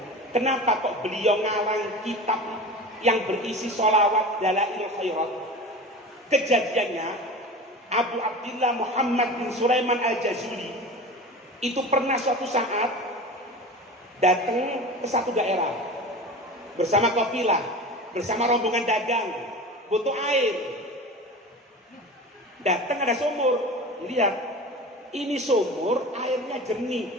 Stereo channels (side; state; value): both; normal; correlation 0.33